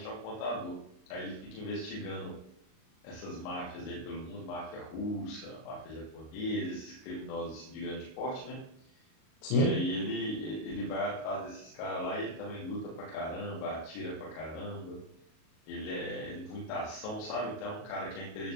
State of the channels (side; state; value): right; late; 38 ms